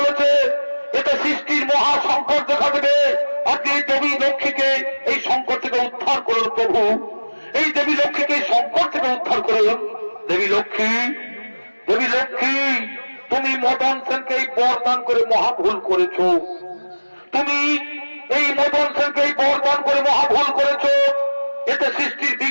এটা সৃষ্টির মহা সংকট দেখা দেবে। আপনি এই দেবী লক্ষ্মীকে এই সংকট থেকে উদ্ধার করুন প্রভু। এই লক্ষ্মী, দেবী লক্ষ্মী, তুমি মদন সেনকে এই বরদান করে মহা ভুল করেছ। তুমি এই মদন সেনকে এই বরদান করে মহা ভুল করেছ। এতে সৃষ্টির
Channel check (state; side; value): inverted; both; correlation -1.00